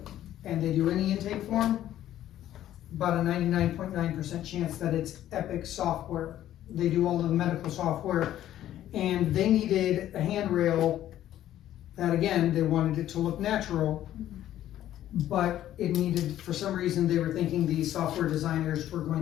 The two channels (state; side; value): quieter; right; 12.5 dB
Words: and they do any intake form, about a 99.9% chance that it's Epic software. They do all of the medical software, and they needed a handrail that, again, they wanted it to look natural, but it needed, for some reason, they were thinking the software designers were going